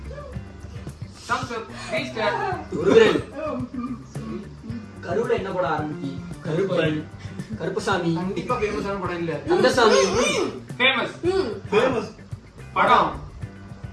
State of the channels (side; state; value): both; identical; correlation 1.00